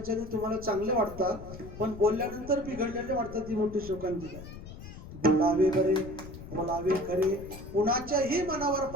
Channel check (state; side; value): noise; left; rumble, 13 dB below the sound